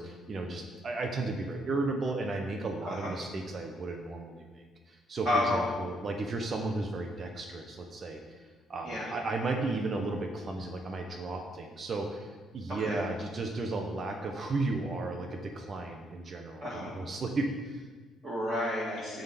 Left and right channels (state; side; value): normal; both; correlation 0.74